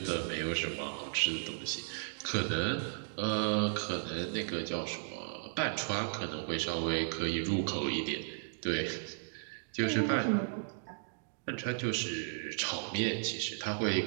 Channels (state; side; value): silent; left; digital silence